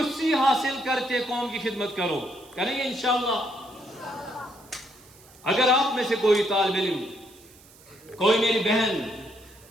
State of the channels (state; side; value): noise; right; hiss, 25 dB below the sound